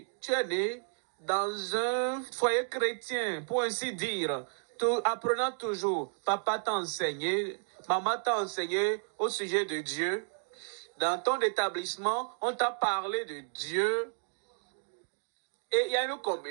né dans un foyer chrétien, pour ainsi dire. Apprenant toujours, papa t'a enseigné, maman t'a enseigné au sujet de Dieu. Dans ton établissement, on t'a parlé de Dieu. Et il y a une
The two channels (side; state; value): left; silent; 56 dB below the other